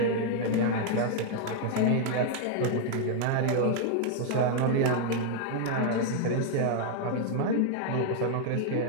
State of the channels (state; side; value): different; both; correlation 0.00